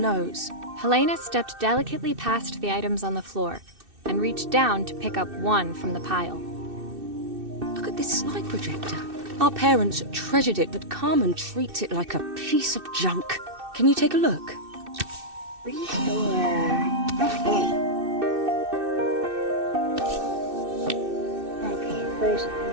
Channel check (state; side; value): late; left; 2.6 ms